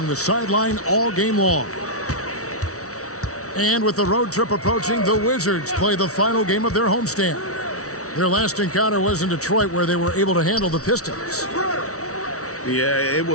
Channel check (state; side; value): late; right; 0.65 ms